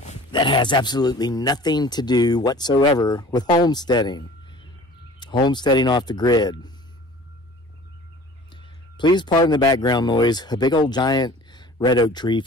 that has absolutely nothing to do whatsoever with homesteading. Homesteading off the grid. Please pardon the background noise. A big old giant red oak tree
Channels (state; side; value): normal; both; correlation 0.46